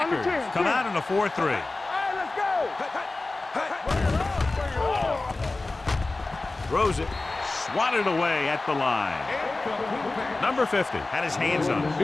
come out in a 4-3. All right, let's go. Throws it. Swatted away at the line. Number 50 had his hands on it.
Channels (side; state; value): right; quieter; 3.2 dB